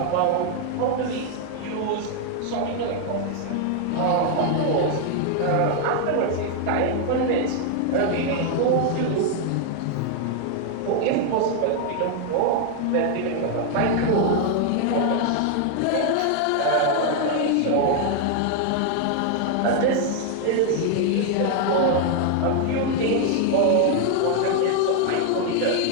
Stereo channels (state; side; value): different; both; correlation 0.00